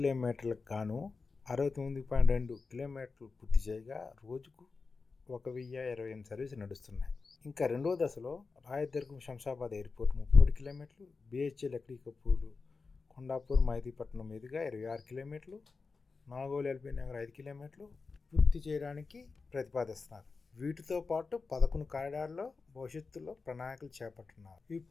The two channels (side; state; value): right; quieter; 4.4 dB